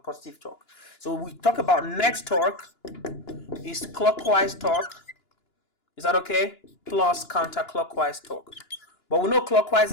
torque. So we talk about net torque is clockwise torque. Is that okay? Plus counterclockwise torque. But we know clockwise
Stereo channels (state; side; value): late; right; 2.9 ms